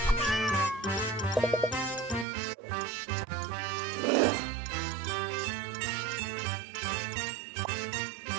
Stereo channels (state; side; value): drops out; left; at 2.2 s